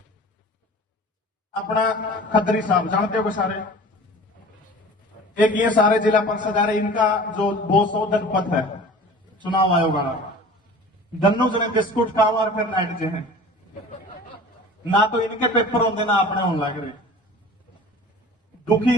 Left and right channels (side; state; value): both; normal; correlation 0.41